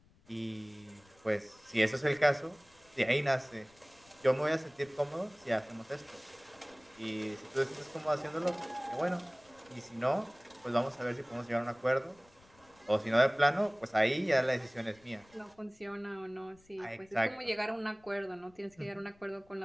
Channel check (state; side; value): noise; left; rumble, 29 dB below the sound